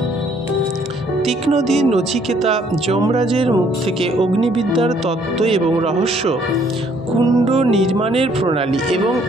তীক্ষ্ণধী নচিকেতা যমরাজের মুখ থেকে অগ্নিবিদ্যার তত্ত্ব এবং রহস্য, কুণ্ড নির্মাণের প্রণালী এবং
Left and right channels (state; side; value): normal; both; correlation 0.64